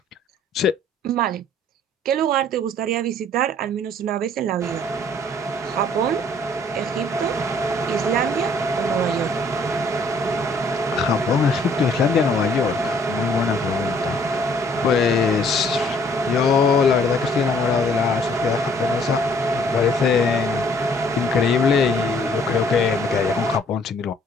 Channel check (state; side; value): normal; both; correlation 0.60